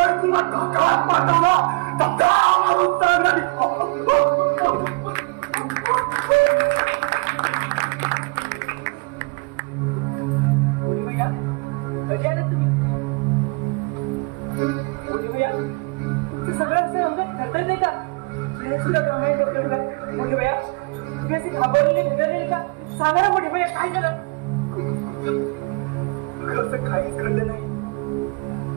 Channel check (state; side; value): quieter; left; 29.8 dB